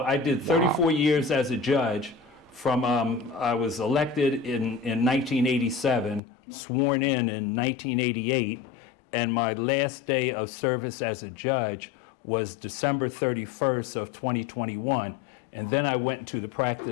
I did 34 years as a judge. I was elected in 1987, sworn in 1988, and my last day of service as a judge was December 31st of 2021. And then I went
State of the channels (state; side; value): drops out; right; at 6.2 s